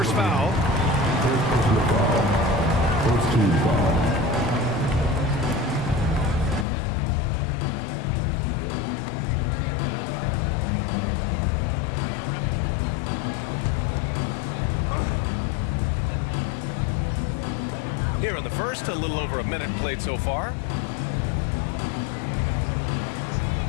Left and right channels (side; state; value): right; drops out; at 6.7 s